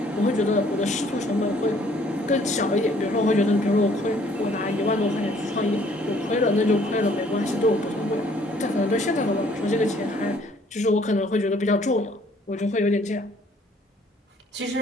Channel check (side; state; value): both; normal; correlation 0.60